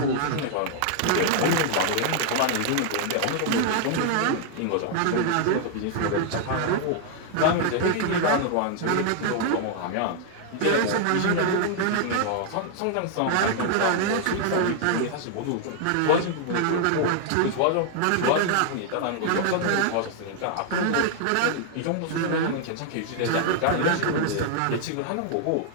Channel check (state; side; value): different; both; correlation 0.00